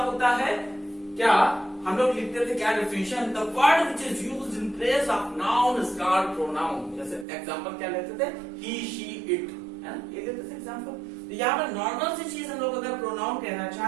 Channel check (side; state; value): left; drops out; at 7.2 s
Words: है? क्या हम लोग लिखते थे क्या definition? The word which is used in place of noun is called pronoun. जैसे एग्जांपल क्या लेते थे, ही शी इट, है ना, ये देते थे एग्जांपल। तो यहाँ पर नॉर्मल सी चीज हम लोग अगर प्रोनाउन कहना